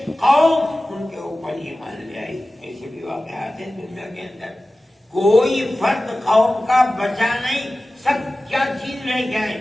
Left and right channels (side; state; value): both; normal; correlation 0.96